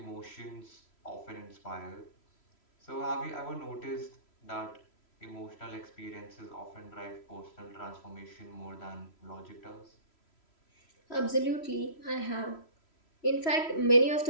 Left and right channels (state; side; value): late; right; 3.1 ms